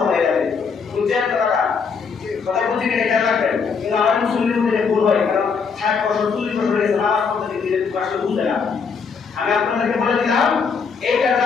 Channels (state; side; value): quieter; right; 5.6 dB